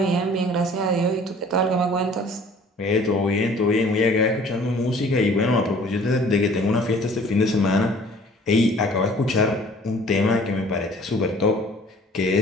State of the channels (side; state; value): both; normal; correlation 0.52